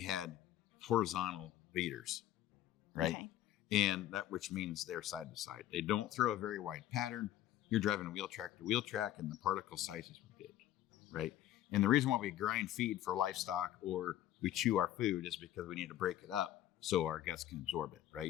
horizontal leaders, right? Okay. And that, which means they're side to side. They don't throw a very wide pattern. You're driving wheel track to wheel track, and the particle sizes were big, right? And the reason why we grind feed for livestock or we chew our food is because we need to break it up so our guts can absorb it,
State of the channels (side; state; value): right; quieter; 12.9 dB